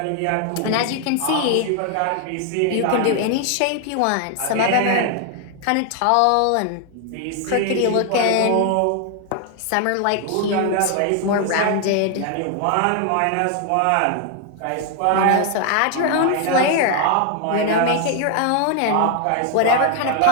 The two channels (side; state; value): both; different; correlation 0.00